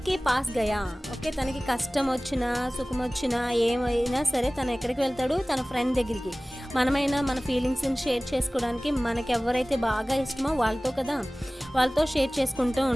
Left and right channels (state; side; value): normal; both; correlation 0.98